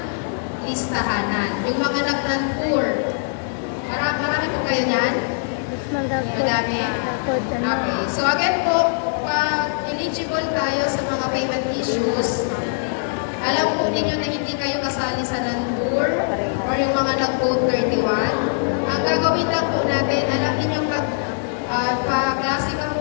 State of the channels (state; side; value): silent; right; 64 dB below the other